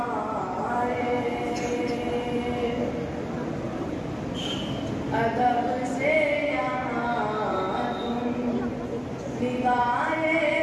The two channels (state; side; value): identical; both; correlation 1.00